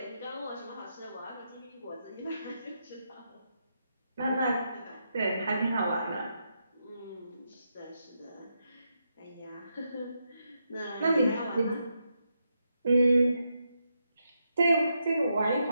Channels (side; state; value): both; inverted; correlation -0.83